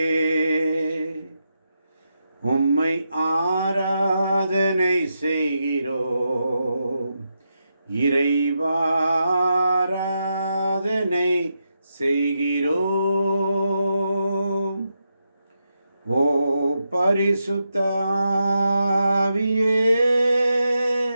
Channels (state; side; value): inverted; both; correlation -0.85